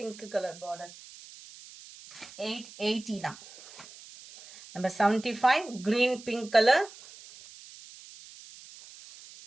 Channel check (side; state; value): right; noise; hiss, 19 dB below the sound